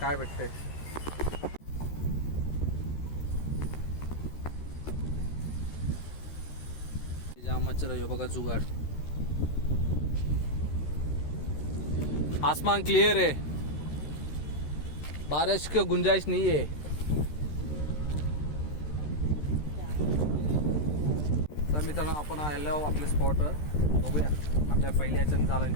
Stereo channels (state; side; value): late; right; 13 ms